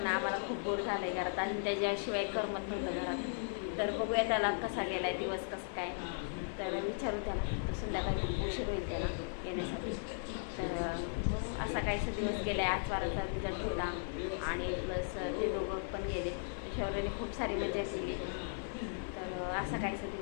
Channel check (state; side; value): silent; right; 53 dB below the other